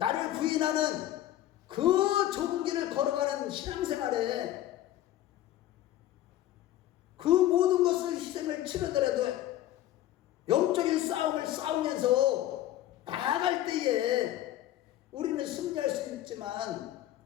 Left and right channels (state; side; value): quieter; right; 13.5 dB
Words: 부인하는 그 좁은 길을 걸어가는 신앙생활에 그 모든 것을 희생을 치르더라도 영적인 싸움을 싸우면서 나아갈 때에 우리는 승리할 수 있지만,